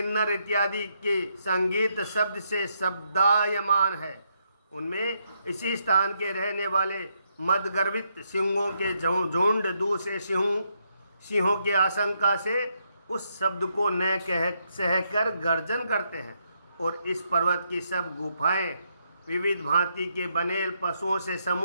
इत्यादि के संगीत शब्द से शब्दायमान है, उनमें इसी स्थान के रहने वाले मदगर्वित सिंहों के झुंड दूसरे सिंहों की आशंका से उस शब्द को न कह सहकर गर्जन करते हैं। और इस पर्वत की सब गुफाएं विविध भांति के बनेल पशुओं से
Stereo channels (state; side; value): inverted; both; correlation -0.78